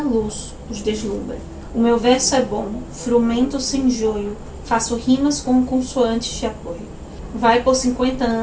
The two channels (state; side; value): identical; both; correlation 1.00